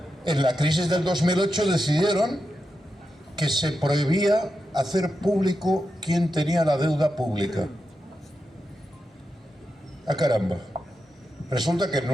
en la crisis del 2008 decidieron que se prohibía hacer público quién tenía la deuda pública. ¡Ah, caramba! Resulta que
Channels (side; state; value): both; normal; correlation 0.88